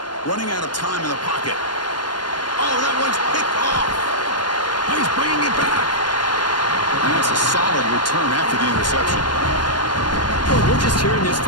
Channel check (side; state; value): right; late; 0.71 ms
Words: Running out of time in the pocket. Oh, that one's picked off. Oh, he's bringing it back. And that's a solid return after the interception. Well, we're just here in this